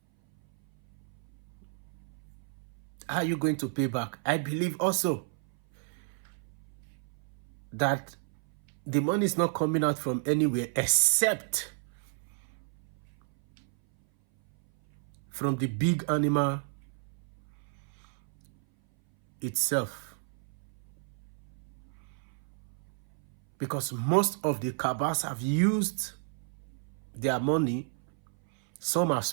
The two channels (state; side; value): silent; left; 57 dB below the other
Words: How are you going to pay back? I believe also that the money is not coming out from anywhere except from the big animal itself. Because most of the cabals have used their money. Some have